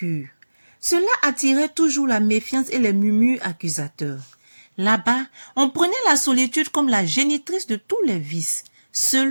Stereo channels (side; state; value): both; inverted; correlation -1.00